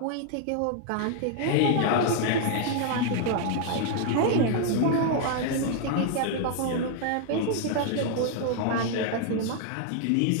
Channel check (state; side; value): different; both; correlation 0.00